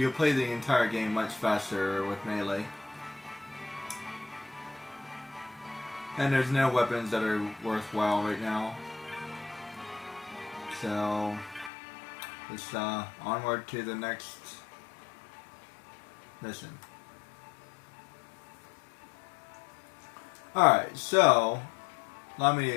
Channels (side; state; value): right; drops out; at 11.7 s